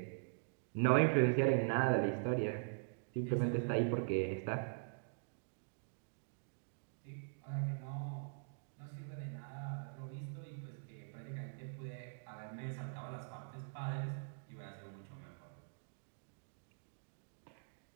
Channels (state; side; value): silent; left; digital silence